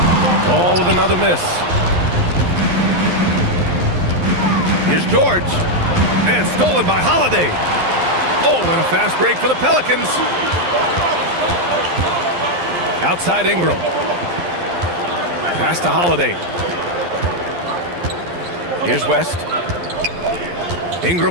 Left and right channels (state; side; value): late; left; 11 ms